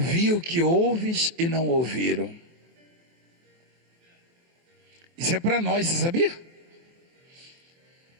o que ouves e não ouviram. Isso é para nós, você sabia?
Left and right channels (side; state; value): left; late; 23 ms